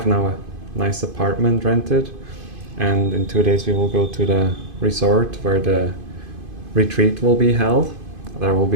now a nice apartment rented, and in 2 days we will go to the resort where the retreat will be held. There will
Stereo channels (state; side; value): late; left; 2.5 ms